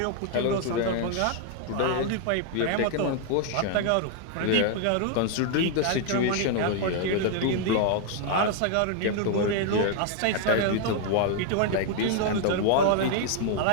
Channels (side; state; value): both; different; correlation 0.00